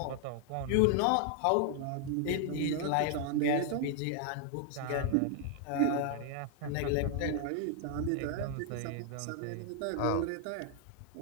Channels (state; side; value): different; both; correlation 0.00